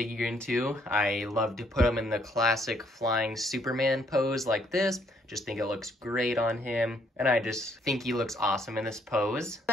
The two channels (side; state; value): both; normal; correlation 0.68